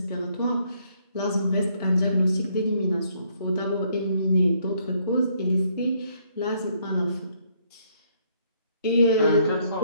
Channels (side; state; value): both; inverted; correlation -0.68